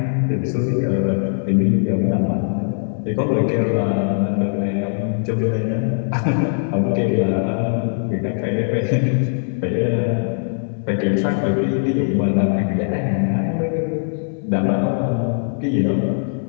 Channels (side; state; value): right; silent; 64 dB below the other